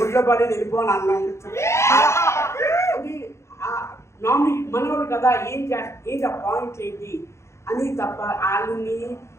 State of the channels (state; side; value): late; right; 0.13 ms